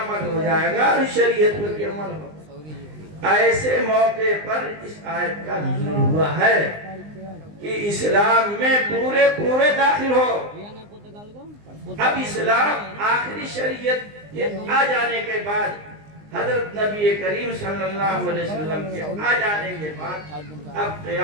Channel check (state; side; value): late; left; 19 ms